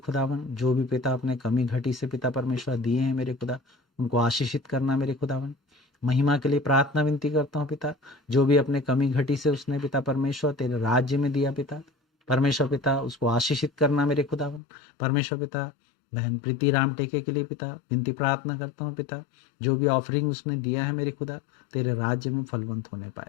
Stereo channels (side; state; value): right; drops out; at 14.6 s